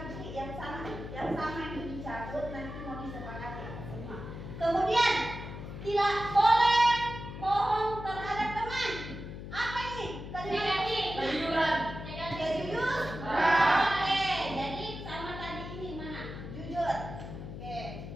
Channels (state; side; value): noise; left; hum, 10 dB below the sound